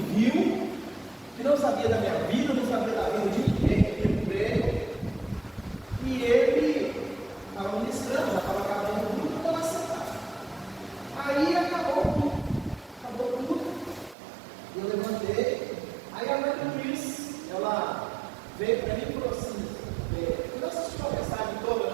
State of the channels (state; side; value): drops out; left; at 14.2 s